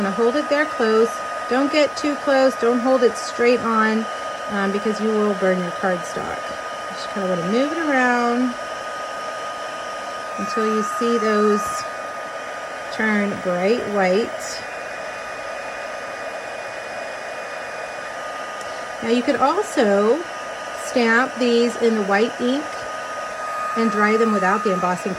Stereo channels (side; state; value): both; identical; correlation 1.00